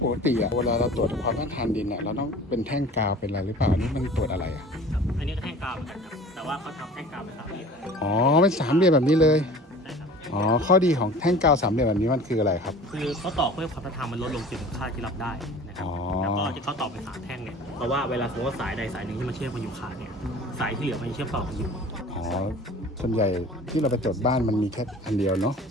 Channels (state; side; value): normal; both; correlation 0.43